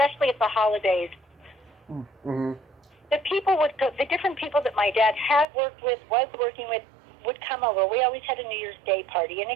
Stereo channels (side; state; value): left; drops out; at 5.5 s